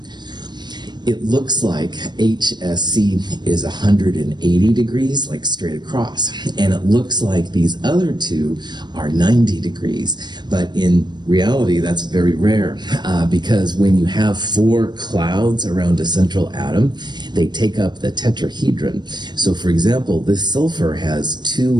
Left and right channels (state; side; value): late; left; 0.21 ms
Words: It looks like HSC is 180 degrees, like straight across. And it looks like these other two are 90 degrees. But in reality, that's very rare because when you have 4 clouds around a central atom, they take up the tetrahedron. So for example, this sulfur has 2